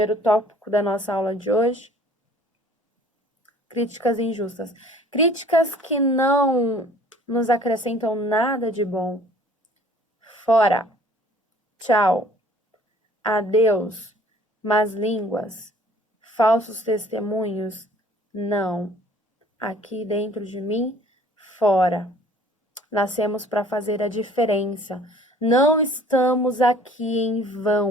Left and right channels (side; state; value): both; normal; correlation 0.52